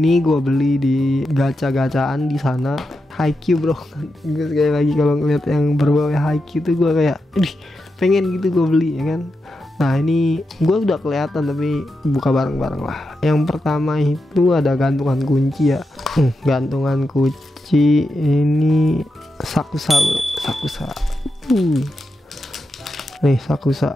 gue beli di gacha-gacaan di sana. Haikyuu bro. Gue sekali lagi kalau ngeliat yang berbau Haikyuu tuh gue kayak pengen gitu gue beli ya kan. Nah ini gue udah kelihatan tapi buka bareng-bareng lah. Yang pertama itu ada gantungan kunci ya. Gantungan kunci ini Sakusa bro. Nih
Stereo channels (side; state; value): both; normal; correlation 0.87